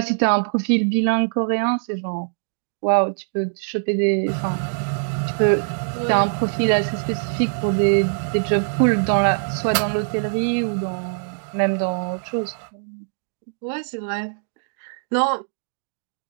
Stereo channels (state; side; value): silent; left; digital silence